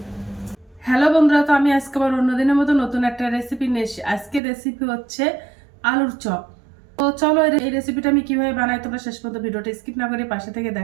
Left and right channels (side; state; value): left; drops out; at 4.4 s